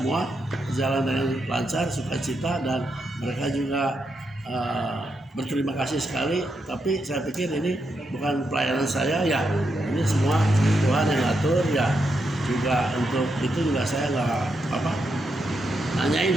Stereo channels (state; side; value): normal; both; correlation 0.83